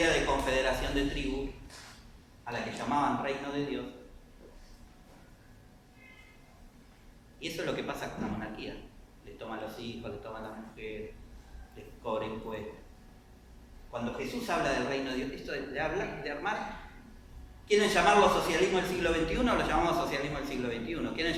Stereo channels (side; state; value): both; identical; correlation 1.00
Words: de confederación de tribus, a la que llamaban reino de Dios. Y eso es lo que pasa con la monarquía. Le toman los hijos, le toman las mujeres, les cobran impuestos. Cuando Jesús habla del reino de Dios, esto de armar, quieren llamarlo socialismo del siglo XXI, lo llamamos socialismo del siglo XXI. Quieren